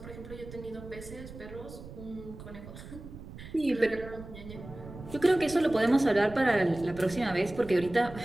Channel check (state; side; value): noise; right; rumble, 14 dB below the sound